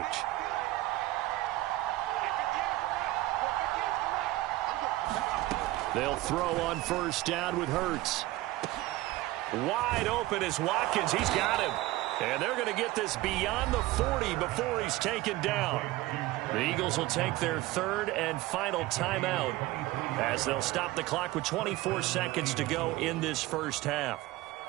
They'll throw on first down with Hurts. Wide open is Watkins. He's got him. And they're going to get this beyond the 40 before he's taken down. The Eagles will take their third and final timeout as they'll stop the clock with 24 seconds to go in this first half.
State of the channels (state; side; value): quieter; left; 17.9 dB